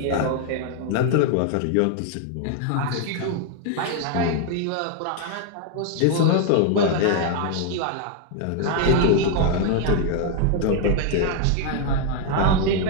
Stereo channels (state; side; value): different; both; correlation 0.01